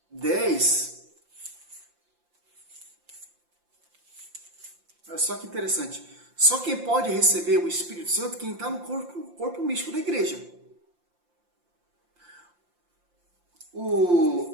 10, olha só que interessante. Só quem pode receber o Espírito Santo é quem está no corpo místico da igreja.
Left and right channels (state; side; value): late; left; 5.8 ms